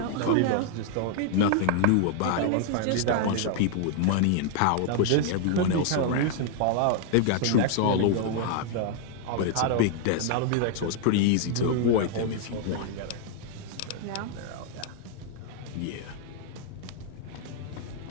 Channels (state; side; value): different; both; correlation -0.01